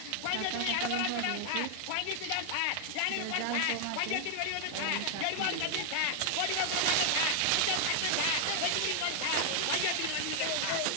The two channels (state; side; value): different; both; correlation 0.00